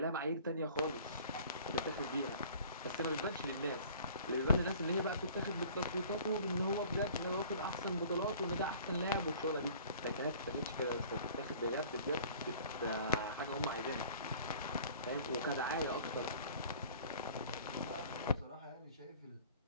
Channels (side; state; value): both; inverted; correlation -0.49